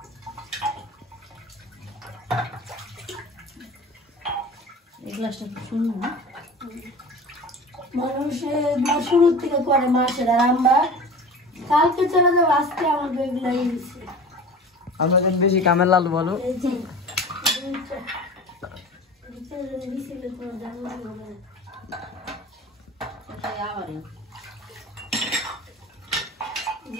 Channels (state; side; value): normal; both; correlation 0.36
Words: এই গ্লাসটা খুব সুন্দর না? মানুষের শুরুর থেকে করে মাসের, আর আমরা কালকে চলে যাবো, আজকে আমাদের এগুলাই দিচ্ছে। আমরা যেন বেশি কামের লালু বলো। এই যে দুইটা দিছিল তোমার জানলা হবে না। এটাই আমারই।